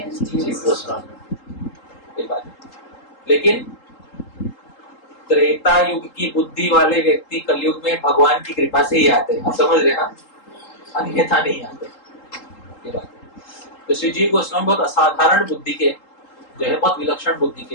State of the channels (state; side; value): late; right; 3.8 ms